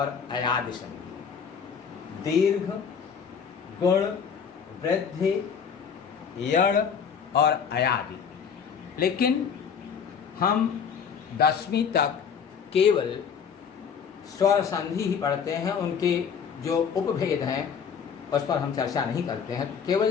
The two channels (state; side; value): quieter; right; 6.8 dB